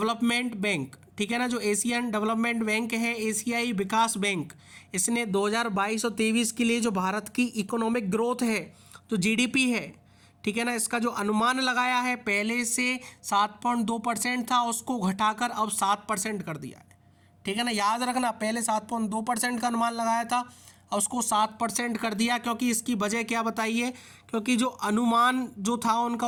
bank. ठीक है ना, जो एशियन डेवलपमेंट बैंक है, एशियाई विकास बैंक, इसने 2022 और 23 के लिए जो भारत की इकोनॉमिक ग्रोथ है, जो जीडीपी है, ठीक है ना। इसका जो अनुमान लगाया है पहले से 7.2% था, उसको घटाकर अब 7% कर दिया है। ठीक है ना, याद रखना पहले 7.2% का अनुमान लगाया था, अब उसको 7% कर दिया। क्योंकि इसकी वजह क्या बताइए, क्योंकि जो अनुमान जो था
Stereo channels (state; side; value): identical; both; correlation 1.00